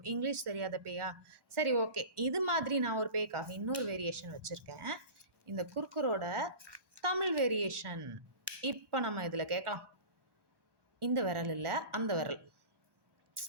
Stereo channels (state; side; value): late; left; 1.1 ms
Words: இங்கிலீஷ் தெரியாத பேயா? சரி ஓகே. இது மாதிரி நான் ஒரு பேய்க்காக இன்னொரு வேரியேஷன் வச்சிருக்கேன். இந்த குர்குரோட தமிழ் வேரியேஷன். இப்போ நம்ம இதுல கேட்கலாம். இந்த விரல் இல்ல, அந்த விரல்.